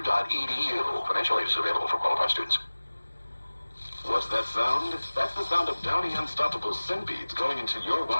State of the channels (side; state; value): both; inverted; correlation -1.00